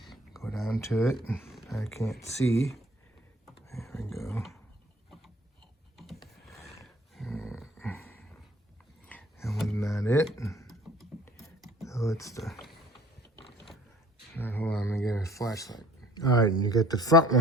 go down to it. I can't see. There we go. That was not it. So it's the... Hold on, let me get a flashlight. All right, you get the front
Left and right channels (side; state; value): both; normal; correlation 0.53